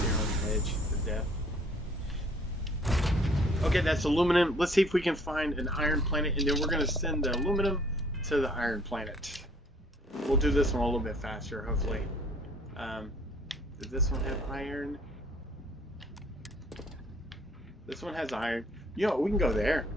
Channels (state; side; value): normal; both; correlation 0.58